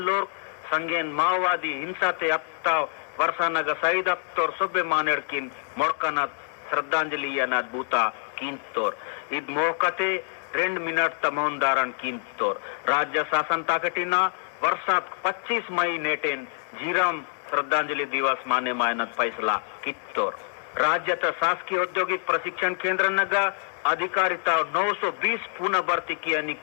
लोग संगेन माओवादी हिंसा ते अत्ता वर्षा नग शहीद अत्तोर सुबे मानेड़ किन मोड़कनत श्रद्धांजलि अनाद भूता किन तोर इद मोहकते 2 मिनट तमोन दारण किन तोर राज्य शासन ताकटिना वर्षात 25 मई नेटेन झीरम श्रद्धांजलि दिवस माने मायनत फैसला कित्तोर राज्य शासकीय औद्योगिक प्रशिक्षण केंद्र नगा अधिकारिता 920 पुनः भर्ती की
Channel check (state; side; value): silent; right; 61 dB below the other